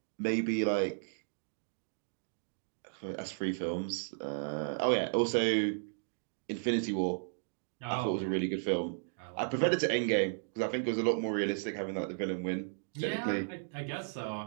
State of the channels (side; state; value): left; silent; digital silence